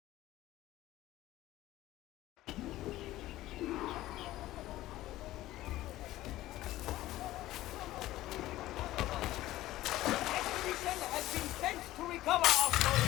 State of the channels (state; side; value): quieter; right; 15.8 dB